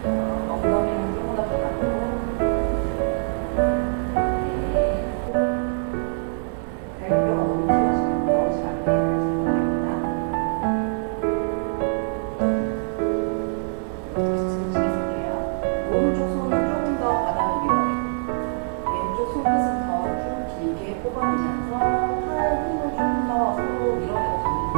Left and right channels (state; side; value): silent; left; 63 dB below the other